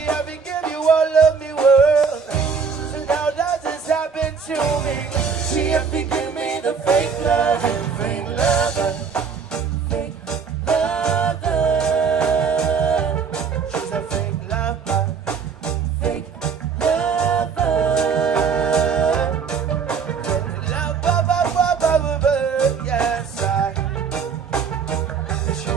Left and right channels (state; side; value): quieter; left; 6.0 dB